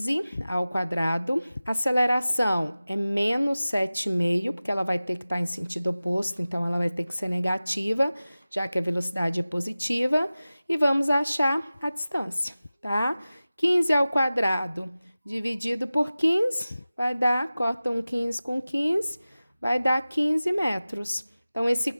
ao quadrado, aceleração é menos 7,5, porque ela vai ter que estar em sentido oposto, então ela vai ter que ser negativa, já que a velocidade é positiva, e vamos achar a distância, tá? 15 ao quadrado dividido por 15, vai dar, corta um 15 com 15, vai dar 15 metros. Então,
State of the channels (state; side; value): inverted; both; correlation -0.97